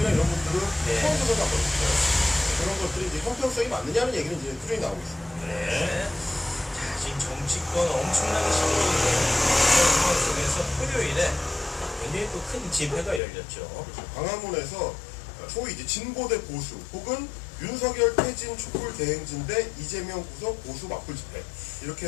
이런 분들은 네. 처음 조사가 안 받았어요. 그런 것들이 이제 형평성이 맞느냐는 얘기는 이제 꾸준히 나오고 있습니다. 네. 자, 지금 정치권 엄청나게 시끄러운데 이런 상황 속에서 토요일에 굉장히 또 큰 집회가 열렸죠. 광화문에서 소위 이제 진보대 보수 혹은 윤석열 퇴진 촛불 대행진 대 이재명 구속 보수 맞불 집회 이렇게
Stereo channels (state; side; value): drops out; right; at 13.2 s